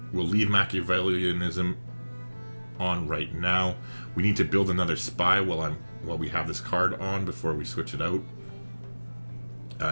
We'll leave Machiavellianism on right now. We need to build another spy while we have this card on before we switch it out.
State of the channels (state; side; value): inverted; both; correlation -1.00